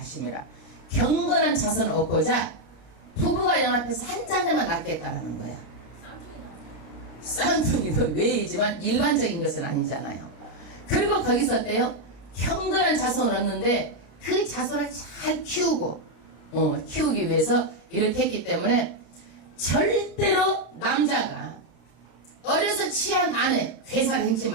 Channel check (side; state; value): right; late; 29 ms